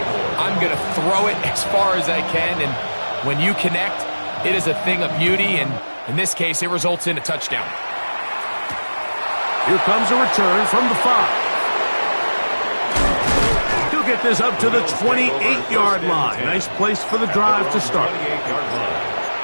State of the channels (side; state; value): both; inverted; correlation -1.00